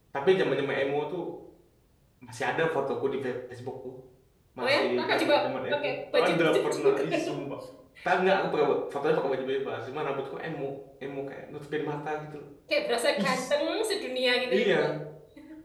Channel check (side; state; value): both; identical; correlation 1.00